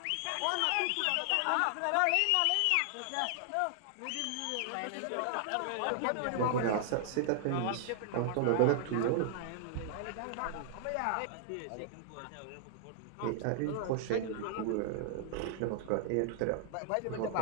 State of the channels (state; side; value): different; both; correlation 0.00